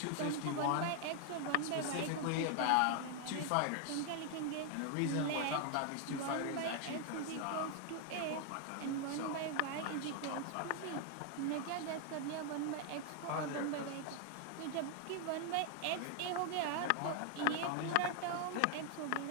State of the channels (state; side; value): different; both; correlation 0.00